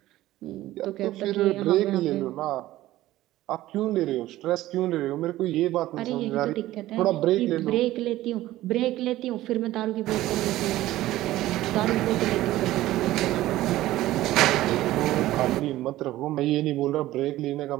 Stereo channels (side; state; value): left; quieter; 15.6 dB